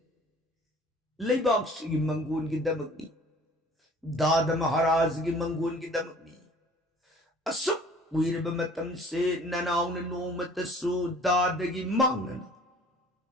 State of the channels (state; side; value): normal; both; correlation 0.51